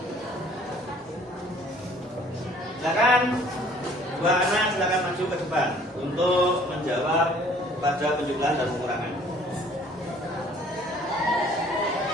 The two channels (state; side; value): normal; both; correlation 0.55